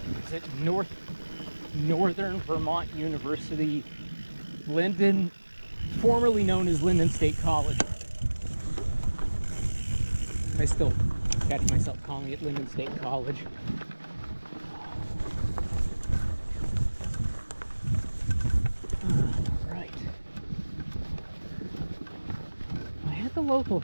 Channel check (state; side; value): inverted; both; correlation -1.00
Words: is it Northern Vermont University, Lyndon, formerly known as Lyndon State College. I still catch myself calling it Lyndon State College. Right. I had the local